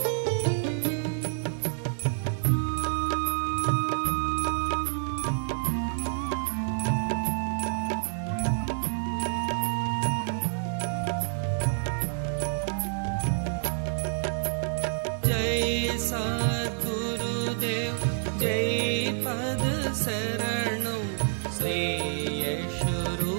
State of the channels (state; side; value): silent; left; 55 dB below the other